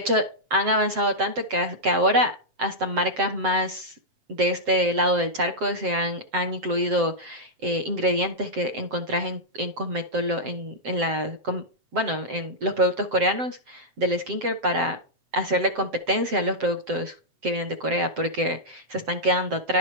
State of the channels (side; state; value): left; late; 7.7 ms